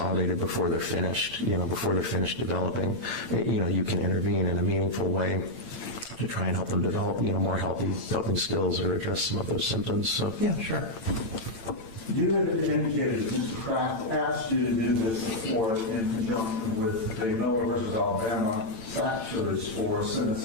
before they're finished, before they're finished developing. You can intervene in a meaningful way to try and help them develop, more healthy coping skills or address some of those symptoms. So, yeah, sure. You had indicated that Mr. Kraft asked you to do this before in conjunction with the Miller versus Alabama factors for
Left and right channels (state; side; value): late; right; 8.9 ms